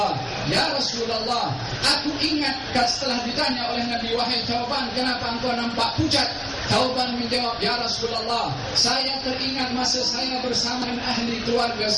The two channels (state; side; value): identical; both; correlation 1.00